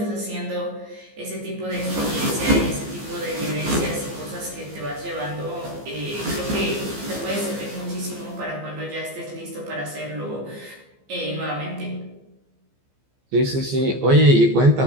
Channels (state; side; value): late; left; 15 ms